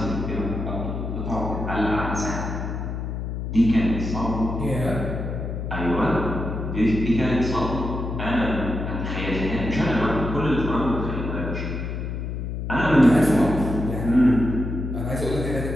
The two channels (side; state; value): left; noise; hum, 4 dB below the sound